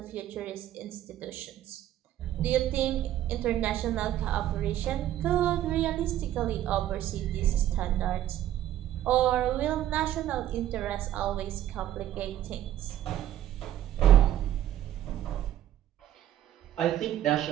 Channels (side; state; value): left; quieter; 12.3 dB